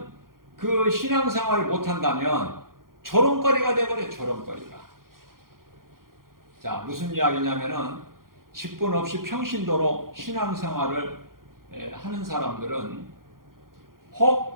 그 신앙생활을 못한다면 조롱거리가 돼버려요. 조롱거리가. 무슨 이야기냐면은 직분 없이 평신도로 신앙생활을 하는 사람들은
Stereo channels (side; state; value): left; late; 0.91 ms